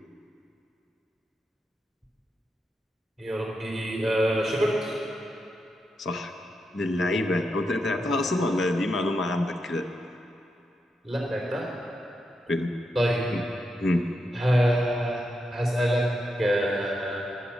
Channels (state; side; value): normal; both; correlation 0.85